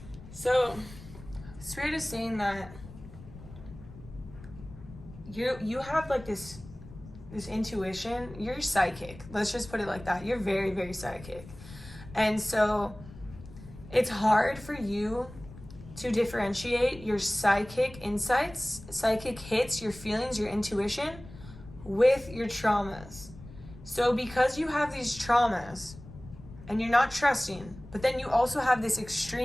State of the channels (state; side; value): noise; left; rumble, 17 dB below the sound